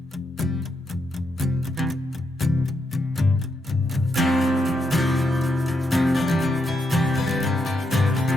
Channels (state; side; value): normal; both; correlation 0.80